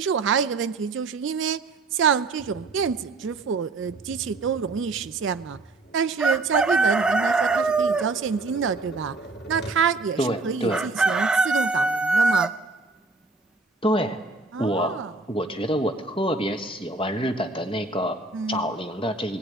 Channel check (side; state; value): left; quieter; 3.5 dB